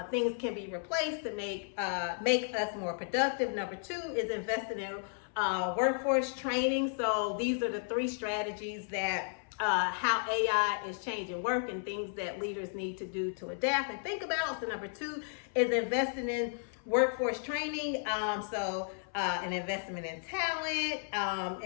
things can be replaced to make us more productive. Number two is investing in workforce training. So these are the three strategies that how AI is changing work and things that leaders need to do to adapt and think about. So number two is investing in workforce training, an investment in talent,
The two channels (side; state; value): right; silent; 55 dB below the other